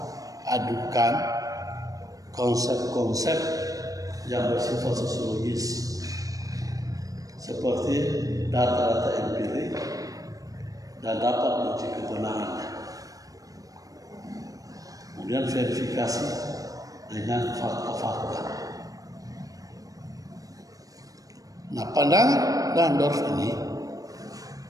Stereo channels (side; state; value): left; late; 0.17 ms